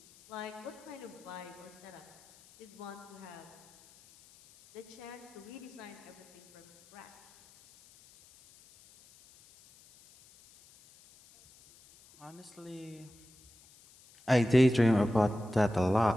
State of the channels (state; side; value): noise; left; hiss, 25 dB below the sound